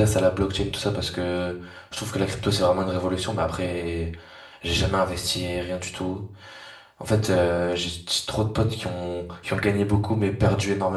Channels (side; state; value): both; identical; correlation 1.00